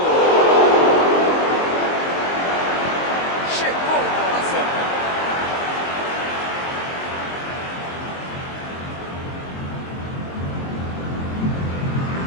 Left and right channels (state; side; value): late; right; 22 ms